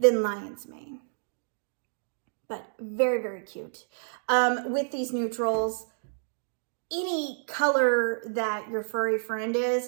Lion's Mane, but very, very cute. With these neutrals, any color that your furry friend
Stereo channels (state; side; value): silent; left; digital silence